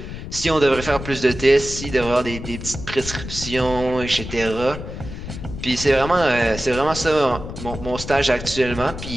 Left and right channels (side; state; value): left; noise; rumble, 9 dB below the sound